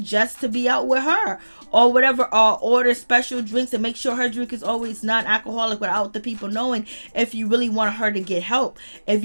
Just to be out with her, or whatever, or order special drinks and make sure her drink is always non-alcoholic without the people knowing, if you really want her to get help, if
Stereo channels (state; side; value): inverted; both; correlation -1.00